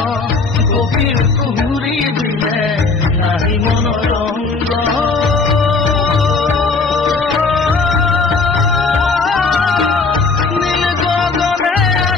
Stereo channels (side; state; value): right; quieter; 4.2 dB